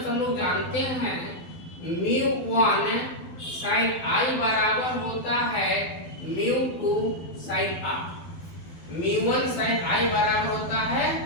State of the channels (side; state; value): right; late; 12 ms